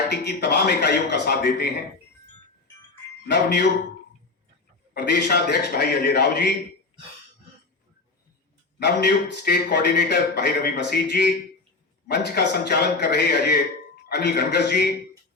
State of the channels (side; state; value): right; quieter; 3.7 dB